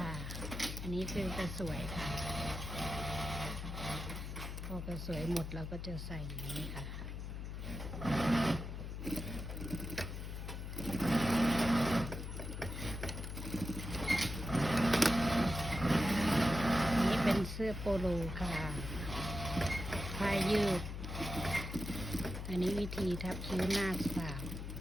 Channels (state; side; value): noise; left; hum, 6 dB below the sound